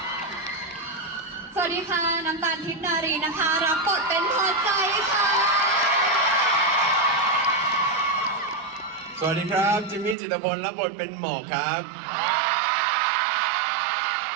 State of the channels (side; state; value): left; drops out; at 10.2 s